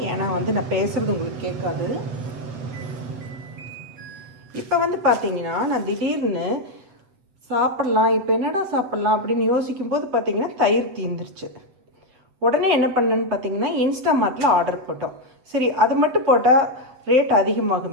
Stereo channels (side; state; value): left; late; 7.8 ms